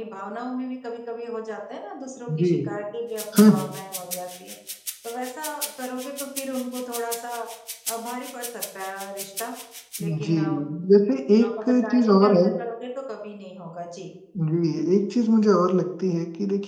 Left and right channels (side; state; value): both; identical; correlation 1.00